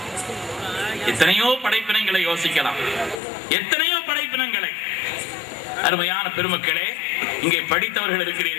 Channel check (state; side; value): drops out; right; at 3.2 s